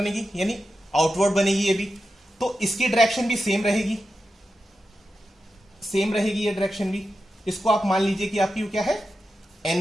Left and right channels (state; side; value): normal; both; correlation 0.90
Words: यानी आउटवर्ड बनेगी ये भी। तो इसकी डायरेक्शन भी सेम रहेगी, सेम रहेगी ये डायरेक्शन भी। इसको आप मान लीजिए कि आपकी क्या है,